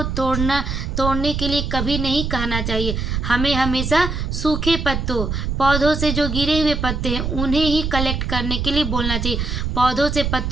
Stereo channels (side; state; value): right; noise; rumble, 2 dB below the sound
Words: तोड़ने के लिए कभी नहीं कहना चाहिए। हमें हमेशा सूखे पत्तों, पौधों से जो गिरे हुए पत्ते हैं उन्हें ही कलेक्ट करने के लिए बोलना चाहिए। पौधों से